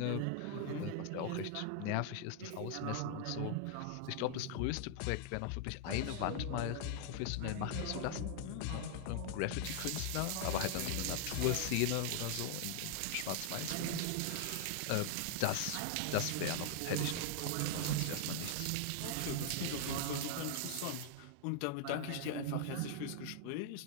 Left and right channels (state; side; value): different; both; correlation 0.00